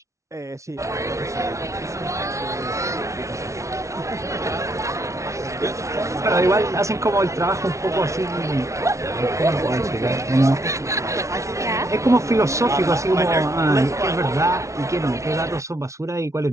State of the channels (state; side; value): late; left; 0.14 ms